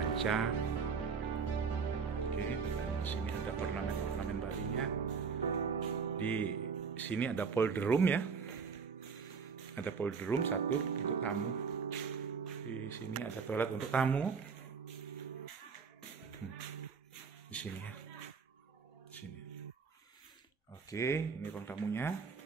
Oke, dan di sini ada ornamen Balinya. Di sini ada polder room ya. Ada powder room satu untuk tamu. Di sini ada toilet untuk tamu. Di sini ya. Di sini. Oke, ini ruang tamunya.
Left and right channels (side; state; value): left; quieter; 5.6 dB